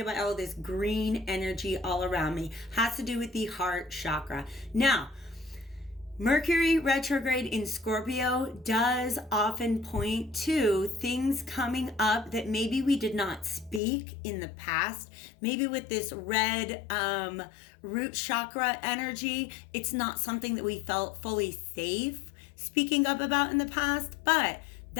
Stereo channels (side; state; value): right; drops out; at 13.8 s